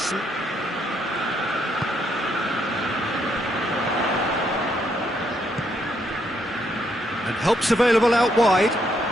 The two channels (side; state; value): both; normal; correlation 0.74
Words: And help's available out wide.